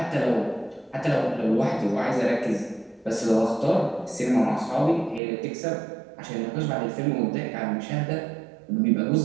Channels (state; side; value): drops out; left; at 5.2 s